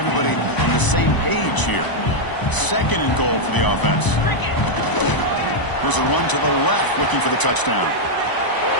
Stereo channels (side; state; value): right; late; 1.0 ms